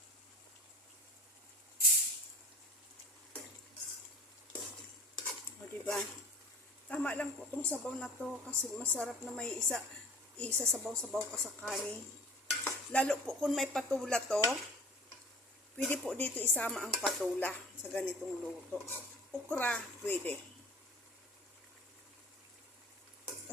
O diba? Tama lang po itong sabaw na to kasi masarap na may isa sabaw-sabaw ka sa kanin. Lalo po kung may patula to, pwede po dito isama ang patula sa ganitong luto. Okra, pwede.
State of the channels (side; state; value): both; normal; correlation 0.44